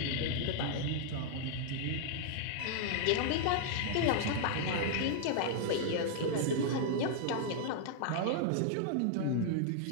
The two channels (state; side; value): different; both; correlation -0.01